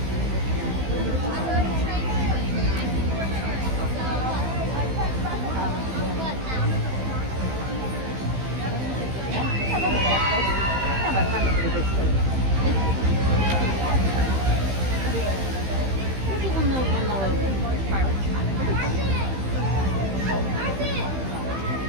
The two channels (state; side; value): late; left; 15 ms